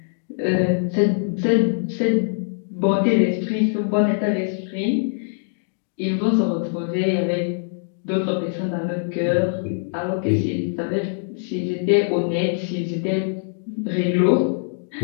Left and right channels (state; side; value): silent; right; digital silence